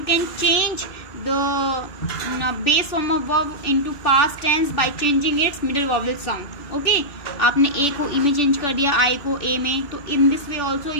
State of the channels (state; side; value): late; right; 2.6 ms